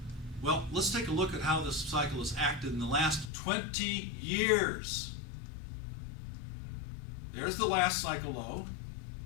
Well, let's take a look at how this cycle has acted in the last 20 years. There's the last cycle low.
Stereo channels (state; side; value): drops out; right; at 3.3 s